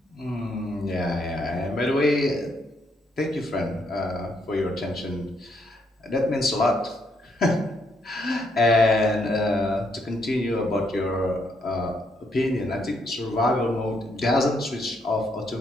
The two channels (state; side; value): normal; both; correlation 0.74